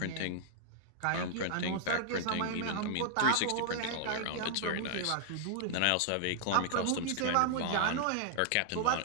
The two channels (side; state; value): both; different; correlation -0.01